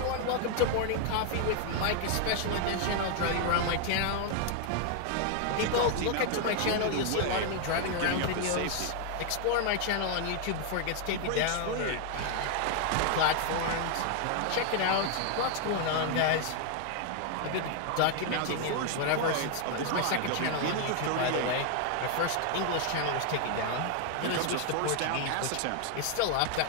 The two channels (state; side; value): different; both; correlation 0.00